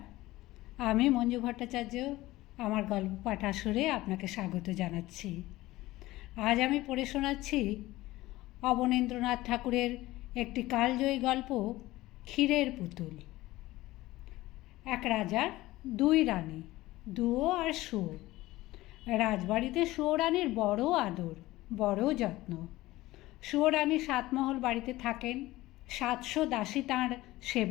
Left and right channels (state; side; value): quieter; right; 17.8 dB